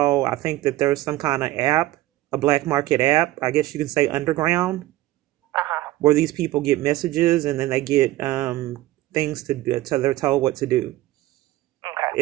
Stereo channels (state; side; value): quieter; left; 16.4 dB